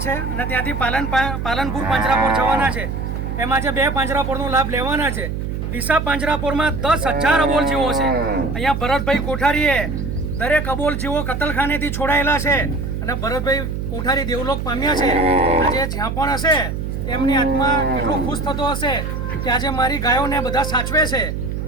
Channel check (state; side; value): noise; right; hum, 4 dB below the sound